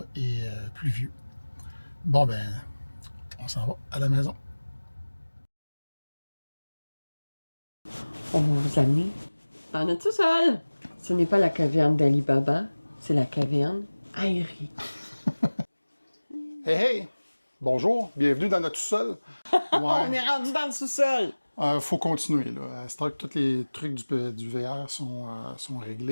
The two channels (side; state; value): both; inverted; correlation -1.00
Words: et pluvieux. Bon, ben, on s'en va à la maison. On va vous amener en notre sous-sol. Ce n'est pas la caverne d'Ali Baba, c'est la caverne aérienne. Hey, hey! Bonjour, bienvenue dans notre sous-sol. Ouais. On est rendu dans le sous-sol. Faut continuer, là. C'est vrai que tous les trucs du VR sont